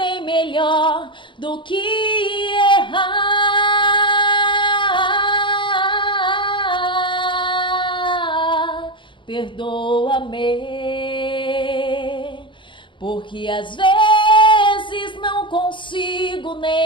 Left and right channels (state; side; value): late; right; 0.24 ms